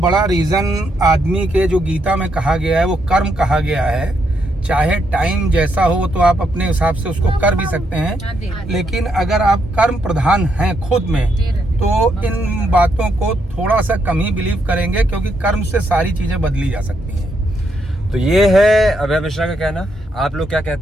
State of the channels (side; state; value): both; normal; correlation 0.78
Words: रीजन आदमी के जो गीता में कहा गया है वो कर्म कहा गया है। चाहे टाइम जैसा हो तो आप अपने हिसाब से उसको कर भी सकते हैं, लेकिन अगर आप कर्म प्रधान हैं खुद में तो इन बातों को थोड़ा सा कम ही बिलीव करेंगे, क्योंकि कर्म से सारी चीजें बदली जा सकती हैं। तो ये है अभय मिश्रा का कहना। आप लोग क्या